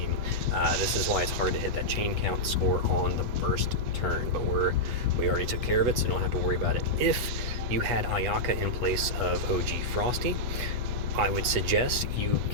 This is why it's hard to hit that chain count score on the burst turn, but we already took care of it, so don't have to worry about it. If you had Ayaka in place of OG Frosty, I would suggest you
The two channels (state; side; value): late; left; 8.3 ms